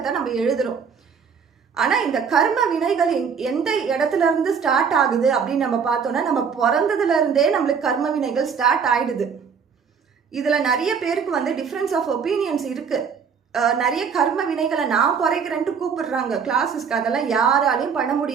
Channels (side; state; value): left; quieter; 6.4 dB